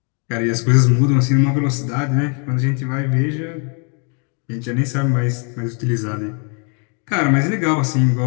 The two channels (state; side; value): quieter; right; 38.8 dB